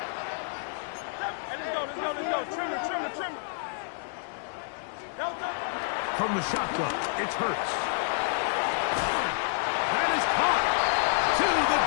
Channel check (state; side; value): silent; right; digital silence